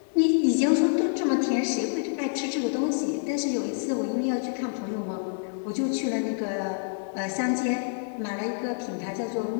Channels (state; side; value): silent; right; 60 dB below the other